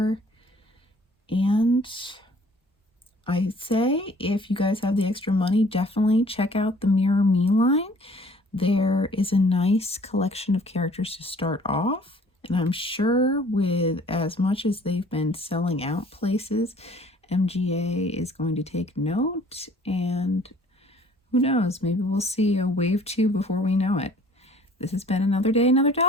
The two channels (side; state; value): both; normal; correlation 0.54